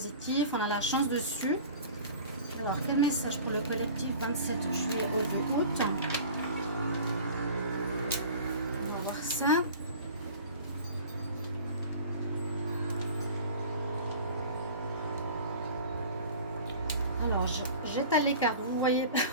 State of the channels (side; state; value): both; inverted; correlation -0.41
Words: On a la chance dessus. Alors, quel message pour le collectif 27 juillet au 2 août? On va voir ça. Alors, j'étale les cartes. Vous voyez